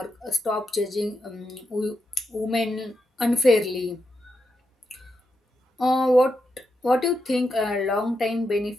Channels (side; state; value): both; normal; correlation 0.85